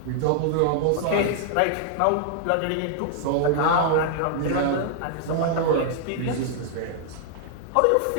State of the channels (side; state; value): both; different; correlation 0.00